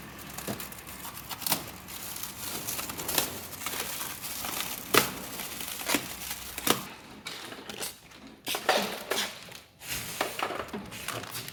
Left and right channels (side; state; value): both; identical; correlation 1.00